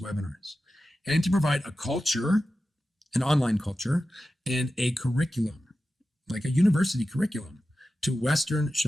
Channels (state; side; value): normal; both; correlation 0.93